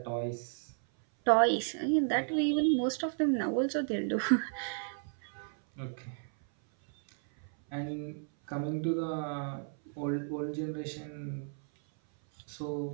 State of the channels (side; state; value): left; silent; 56 dB below the other